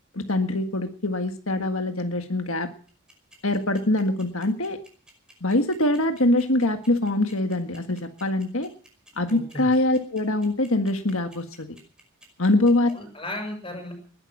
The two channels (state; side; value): normal; both; correlation 0.38